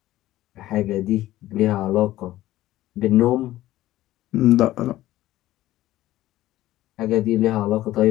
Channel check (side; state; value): right; quieter; 15.2 dB